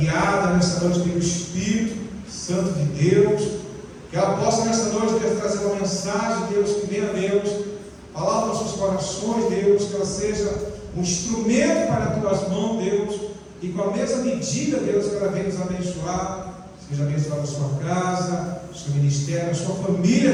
nesta noite pelo Espírito Santo de Deus, que ela possa nesta noite, Deus, trazer uma mensagem, Deus, que venha, Deus, falar aos nossos corações, Deus, que ela seja um instrumento para as tuas mãos, Deus, e com a mesma medida, Deus, que ela venha nos abençoar, seja abençoada a sua casa, seu ministério, a sua família,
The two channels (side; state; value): both; identical; correlation 1.00